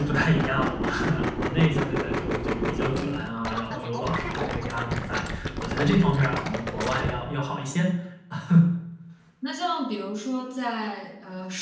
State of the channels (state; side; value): identical; both; correlation 1.00